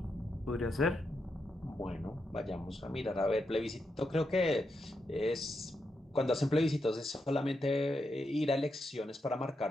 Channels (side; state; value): both; normal; correlation 0.84